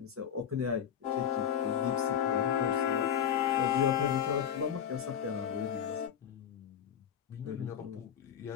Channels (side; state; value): right; quieter; 8.8 dB